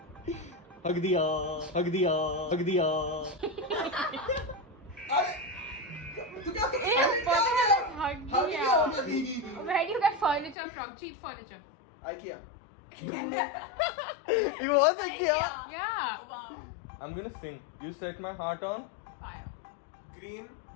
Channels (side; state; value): right; drops out; at 10.6 s